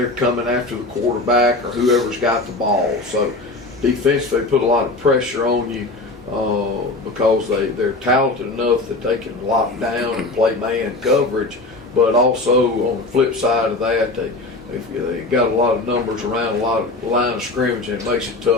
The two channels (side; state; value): right; quieter; 3.0 dB